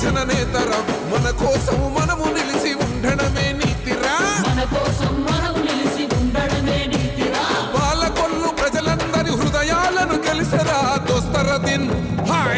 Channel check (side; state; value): both; identical; correlation 1.00